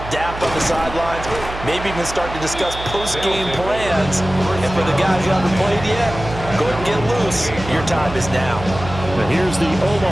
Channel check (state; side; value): noise; right; hum, 11 dB below the sound